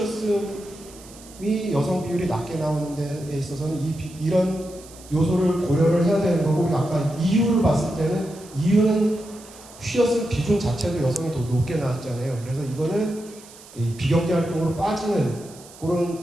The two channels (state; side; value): noise; right; hiss, 21 dB below the sound